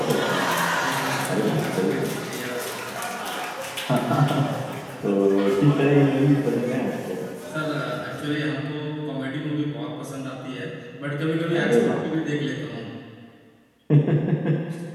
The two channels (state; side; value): identical; both; correlation 1.00